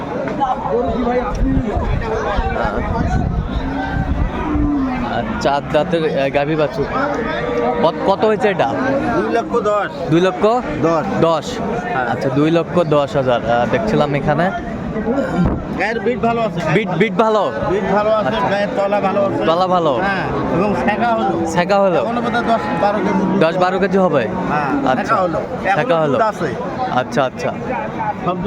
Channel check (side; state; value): both; identical; correlation 1.00